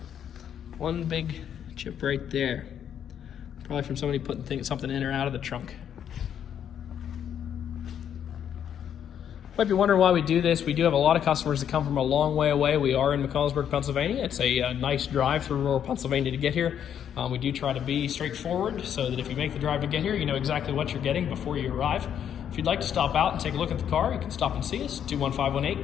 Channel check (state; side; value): quieter; right; 9.1 dB